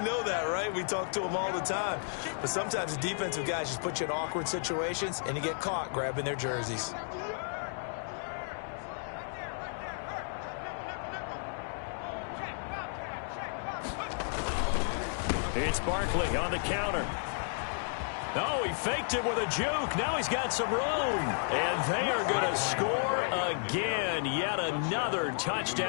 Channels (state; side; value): silent; right; digital silence